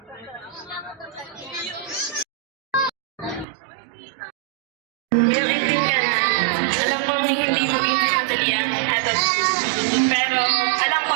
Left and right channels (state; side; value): drops out; left; at 3.5 s